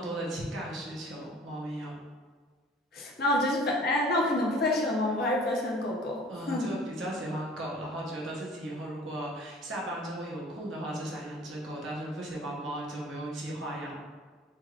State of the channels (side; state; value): both; normal; correlation 0.48